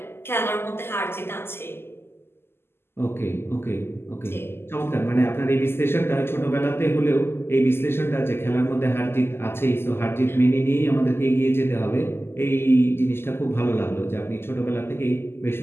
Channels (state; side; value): late; right; 0.12 ms